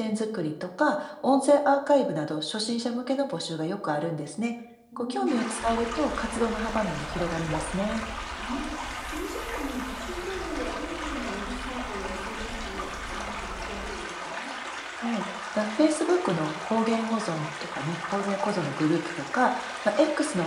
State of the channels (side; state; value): both; identical; correlation 1.00